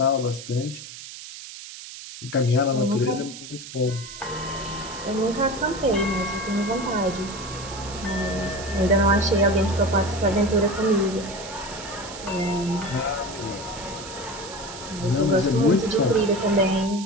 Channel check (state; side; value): noise; right; hiss, 13 dB below the sound